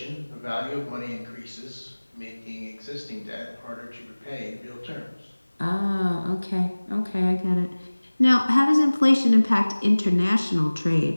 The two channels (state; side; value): inverted; both; correlation -1.00